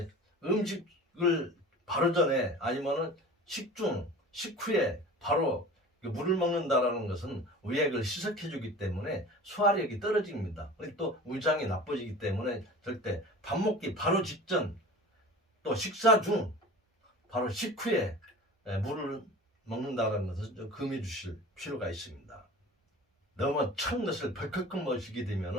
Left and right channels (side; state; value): both; normal; correlation 0.39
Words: 음식을 바로 전에 아니면은 식중, 식후에 바로 물을 먹는다라는 것은 의액을 희석해 주기 때문에 소화력이 떨어집니다. 또 위장이 나빠지기 때문에 절대 밥 먹기 바로 직전, 또 식사 중, 바로 식후에 물을 먹는다는 것을 좀 금해 주실 필요가 있습니다. 너무 찬 것을 벌컥 마시게